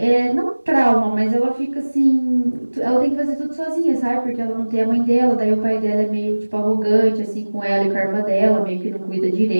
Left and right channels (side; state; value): both; inverted; correlation -1.00